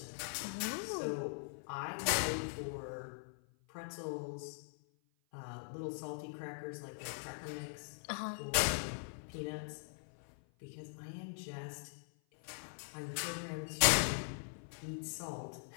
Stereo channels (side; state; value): right; silent; 50 dB below the other